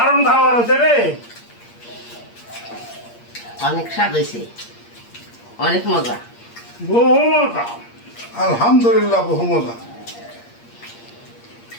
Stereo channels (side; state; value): right; late; 8.6 ms